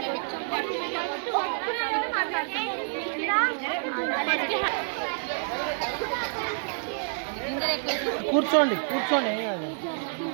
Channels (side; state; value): left; silent; 59 dB below the other